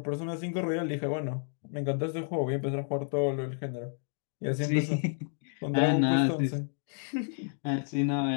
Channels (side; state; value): right; silent; 57 dB below the other